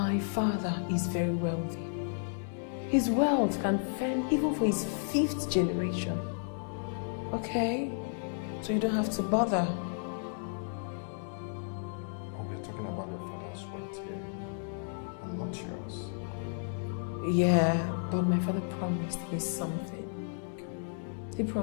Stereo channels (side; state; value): right; silent; digital silence